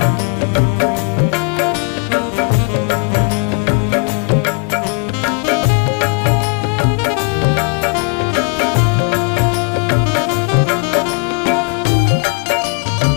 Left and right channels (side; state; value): right; quieter; 37.0 dB